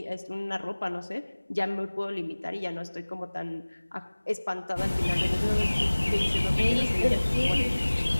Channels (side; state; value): both; inverted; correlation -1.00